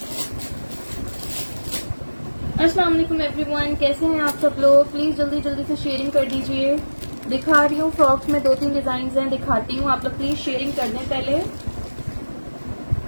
अस्सलाम वालेकुम एवरीवन, कैसे हैं आप सब लोग? प्लीज जल्दी जल्दी से शेयरिंग कर दीजिए। दिखा रही हूँ फ्रॉक्स में 2-3 डिजाइन हैं, दिखाती हूँ। आप लोग प्लीज शेयरिंग कर दें पहले।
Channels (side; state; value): both; inverted; correlation -1.00